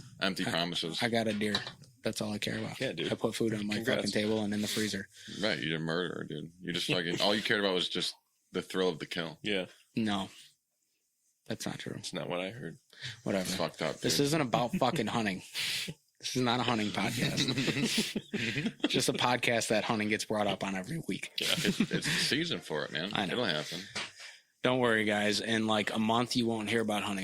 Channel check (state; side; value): identical; both; correlation 1.00